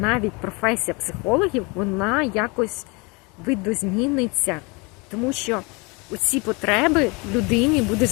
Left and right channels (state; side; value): quieter; right; 28.5 dB